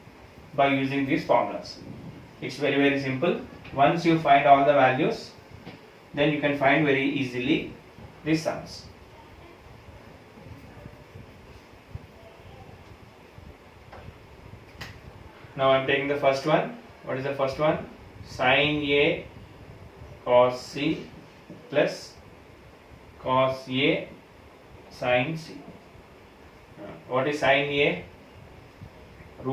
by using these formulas. It's very simple. Once you find all the values, then you can find very easily these sums. Now I am taking the first one. What is the first one? Sin A cos C plus cos A sin C. What is sin A?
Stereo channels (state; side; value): identical; both; correlation 1.00